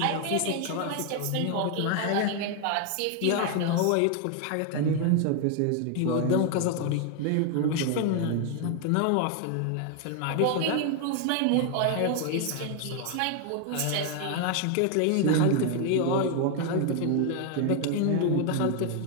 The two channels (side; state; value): both; different; correlation 0.00